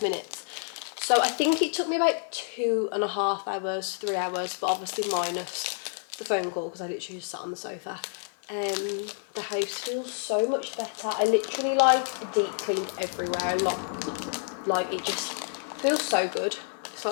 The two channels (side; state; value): right; silent; 59 dB below the other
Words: minutes. So I think it took me about 2.5 hours, 3 hours, but obviously minus the phone call because I literally just sat on the sofa. The house feels so much better. I literally like deep cleaned everywhere. Like it just feels so good. It's